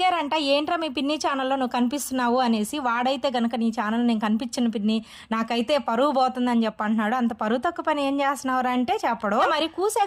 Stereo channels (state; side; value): identical; both; correlation 1.00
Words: "ఏంట్రా మీ పిన్ని ఛానల్‌లో నువ్వు కనిపిస్తున్నావు" అనేసి. వాడైతే గనక "నీ ఛానల్ నేను కనిపించను పిన్ని, నాకైతే పరువు పోతుందని" చెప్పి అంటున్నాడు. అంత పరువు తక్కువ పని ఏం చేస్తున్నావురా అంటే చెప్పడు. మరి